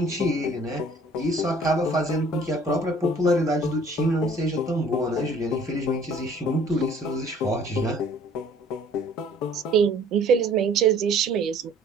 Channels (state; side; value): normal; both; correlation 0.54